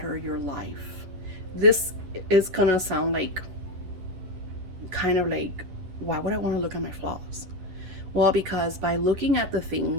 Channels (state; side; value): late; left; 11 ms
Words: your life. This is going to sound like kind of like, why would I want to look at my flaws? Well, because by looking at the